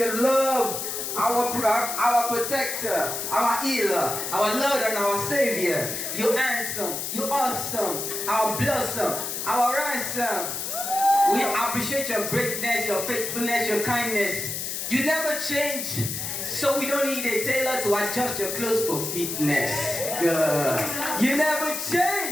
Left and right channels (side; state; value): left; noise; hiss, 4 dB below the sound